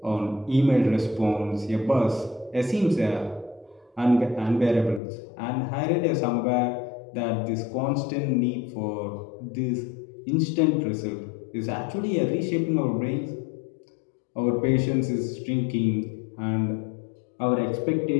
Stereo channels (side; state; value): right; drops out; at 5.0 s